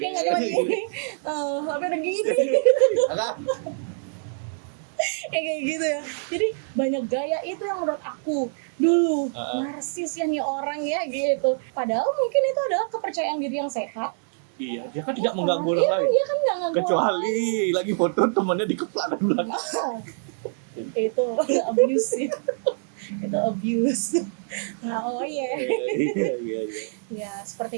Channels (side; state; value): left; silent; digital silence